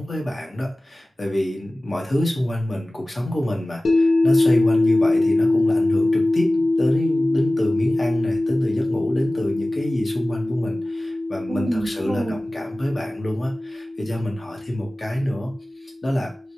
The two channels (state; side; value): normal; both; correlation 0.98